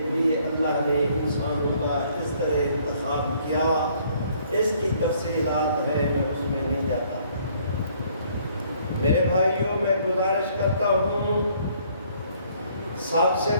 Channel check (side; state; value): both; inverted; correlation -0.63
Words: بھی اللہ نے انسانوں کا اس طرح انتخاب کیا۔ اس کی تفصیلات ہے، میں اس میں نہیں جاتا۔ میرے بھائیوں، میں گزارش کرتا ہوں، سب سے